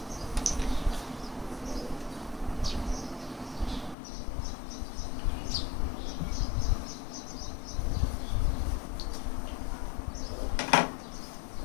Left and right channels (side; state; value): right; drops out; at 4.0 s